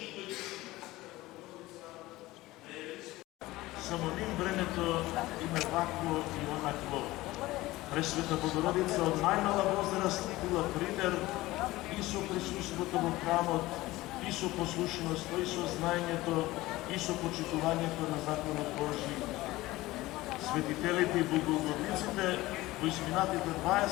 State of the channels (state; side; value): quieter; right; 18.4 dB